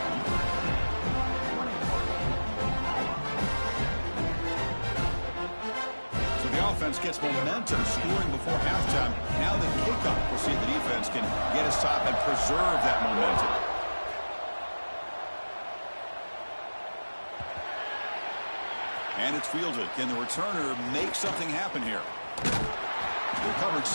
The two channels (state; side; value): inverted; both; correlation -1.00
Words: So the offense gets momentum, scoring before halftime. Now the kickoff. We'll see if the defense can get a stop and preserve that momentum. And it's fielded. Can the returner make something happen here? The coverage